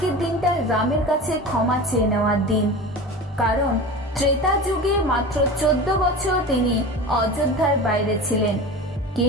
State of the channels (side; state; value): both; normal; correlation 0.32